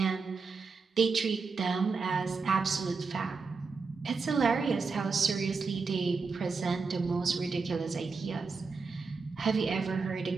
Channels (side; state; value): left; quieter; 4.6 dB